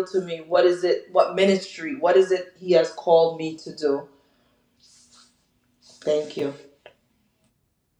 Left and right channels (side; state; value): both; identical; correlation 1.00